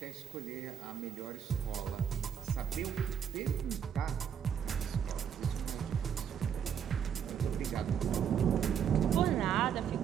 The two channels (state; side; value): quieter; left; 8.2 dB